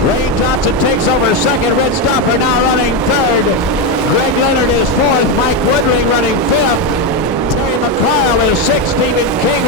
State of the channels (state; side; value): normal; both; correlation 0.09